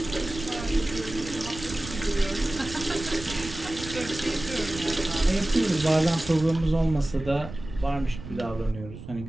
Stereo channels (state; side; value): noise; right; rumble, 12 dB below the sound